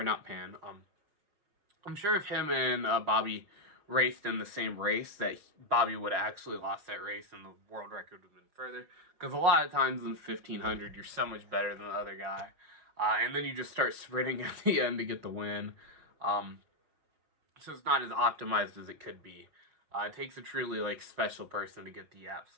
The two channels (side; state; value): left; late; 5.5 ms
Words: sure if him and Bobby raced in the same race, that Bobby would have actually lost that race and the world record would have been further. Because a lot of times in the 1500, you're so much better than the other guy, and then you just start sprinting at the end to get the win. So it's not as optimized as it could be. It takes a truly special person to get the